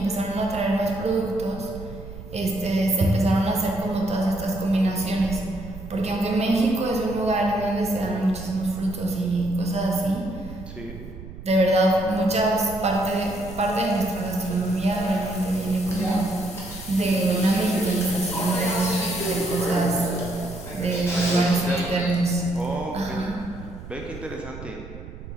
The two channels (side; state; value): right; noise; rumble, 13 dB below the sound